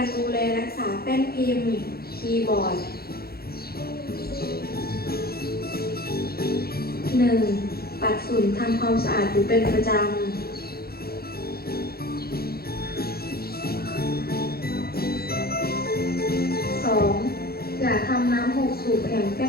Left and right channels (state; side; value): late; right; 0.45 ms